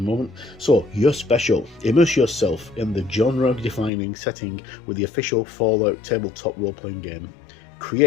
So, you're special. Immerse yourself in the genre-defining setting with the official Fallout tabletop role-playing game.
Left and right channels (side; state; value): right; drops out; at 3.9 s